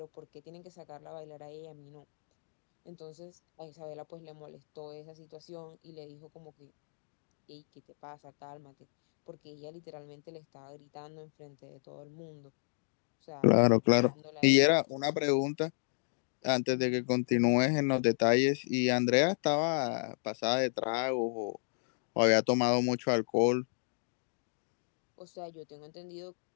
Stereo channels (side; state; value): right; silent; digital silence